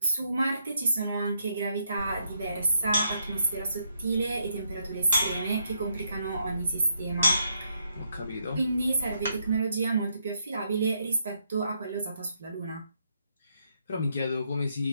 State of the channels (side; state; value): both; inverted; correlation -0.76